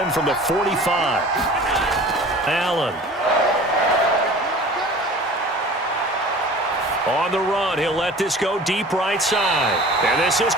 from the 45. Allen. On the run, he'll let this go deep right side. And this is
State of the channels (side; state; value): both; normal; correlation 0.43